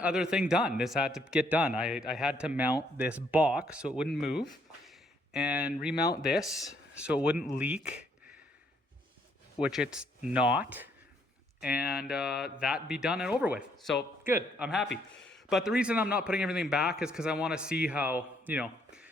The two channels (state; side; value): normal; both; correlation 0.70